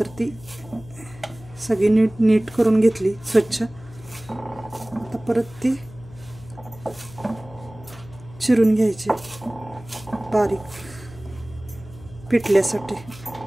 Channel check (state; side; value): noise; left; hum, 18 dB below the sound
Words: ती सगळी नीट करून घेतली स्वच्छ. आता परत ती चिरून घ्यायची बारीक पिठल्यासाठी.